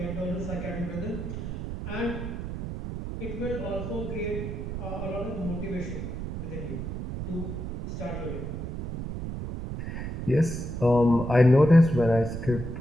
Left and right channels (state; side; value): noise; right; rumble, 6 dB below the sound